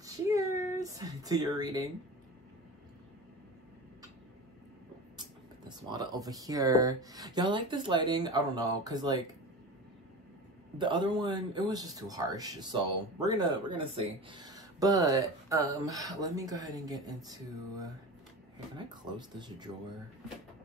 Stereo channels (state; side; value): normal; both; correlation 0.31